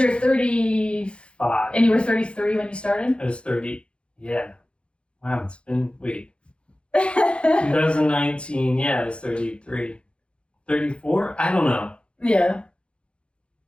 35, and you were 33 when you started? I was 30, yeah. Wow, it's been, 2019, yeah, I was 33. 34? I don't know. Yeah.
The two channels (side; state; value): right; late; 0.057 ms